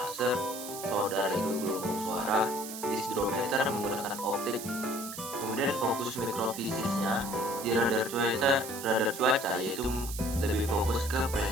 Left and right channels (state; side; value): noise; right; hiss, 10 dB below the sound